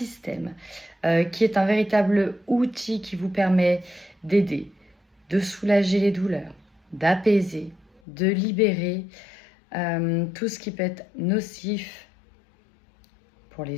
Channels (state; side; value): drops out; right; at 8.0 s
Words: qui est un véritable outil qui vous permet d'aider, de soulager les douleurs, d'apaiser, de libérer tout ce qui peut être nocif pour